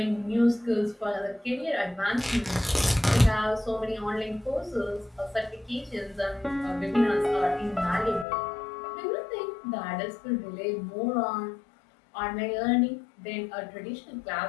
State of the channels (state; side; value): drops out; right; at 8.2 s